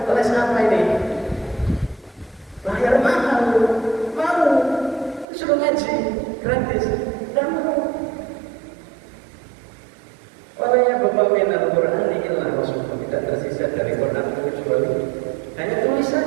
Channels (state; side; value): drops out; left; at 5.2 s